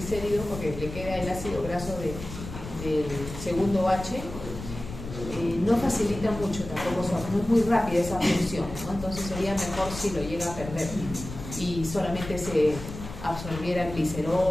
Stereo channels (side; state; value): left; noise; rumble, 10 dB below the sound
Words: porque le queda el ácido graso del segundo H, no facilita mucho tampoco, no es muy rápida esa función, ¿no? Entonces sería mejor si lo llega a perder y solamente se absorbiera